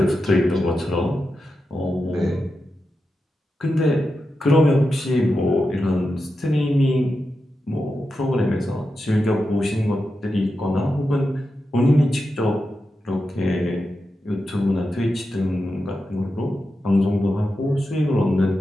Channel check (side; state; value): both; normal; correlation 0.89